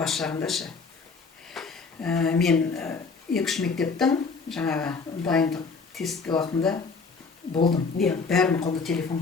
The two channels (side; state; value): right; quieter; 4.7 dB